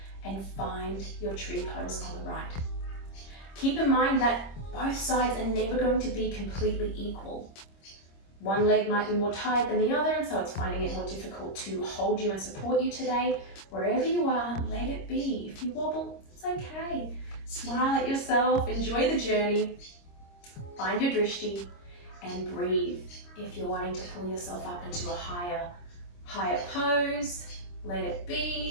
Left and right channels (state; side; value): late; right; 26 ms